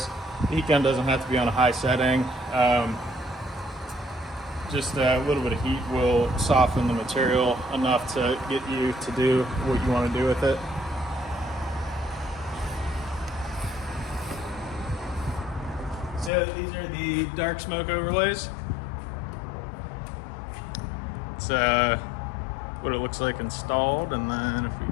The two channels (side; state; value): right; drops out; at 16.3 s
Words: The heat gun doesn't have to be on a high setting. Just a little bit of heat will soften the material enough to get you to do what you want to do with it. So these are the dark smoke overlays. It's what it looks like installed, and then if